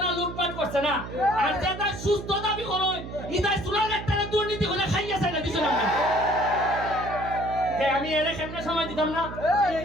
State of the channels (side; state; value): right; noise; hum, 10 dB below the sound